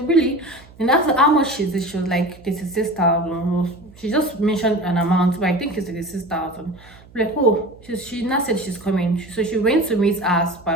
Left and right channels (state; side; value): noise; right; hum, 24 dB below the sound